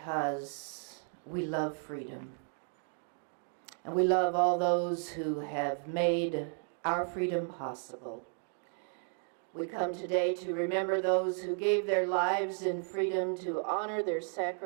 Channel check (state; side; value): silent; left; 55 dB below the other